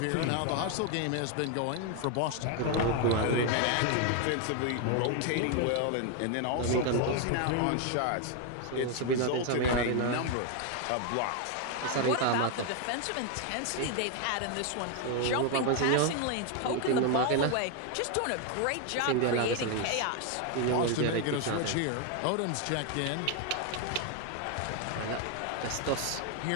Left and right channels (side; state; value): both; different; correlation 0.01